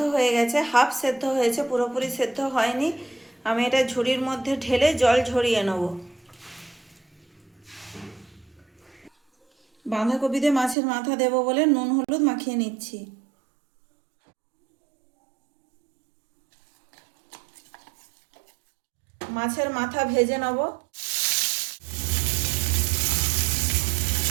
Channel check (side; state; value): left; drops out; at 10.8 s